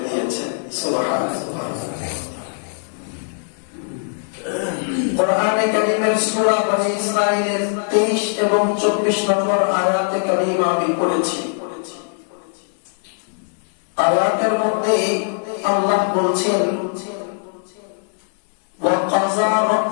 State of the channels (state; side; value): silent; right; digital silence